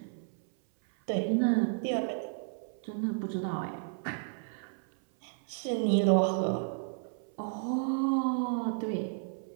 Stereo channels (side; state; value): left; silent; 56 dB below the other